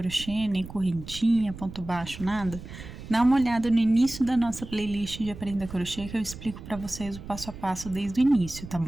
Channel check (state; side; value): noise; right; rumble, 13 dB below the sound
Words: nem correntinha, ponto baixo, nada, dá uma olhada no início da nossa playlist de Aprenda Crochê, que eu explico pra vocês o passo a passo desde o início, tá